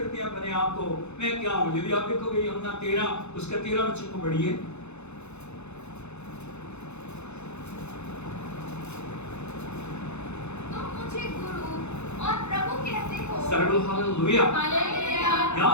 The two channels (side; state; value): right; late; 0.81 ms